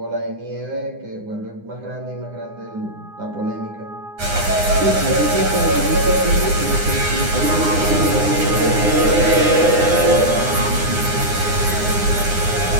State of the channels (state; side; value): late; left; 9.7 ms